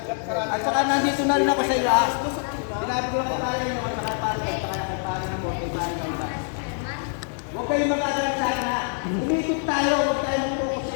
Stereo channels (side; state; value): right; silent; 56 dB below the other